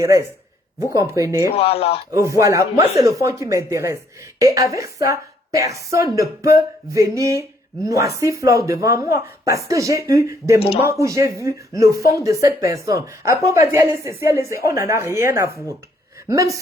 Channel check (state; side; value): normal; both; correlation 0.68